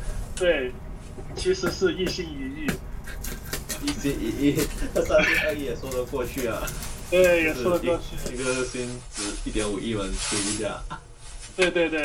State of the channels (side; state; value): both; identical; correlation 1.00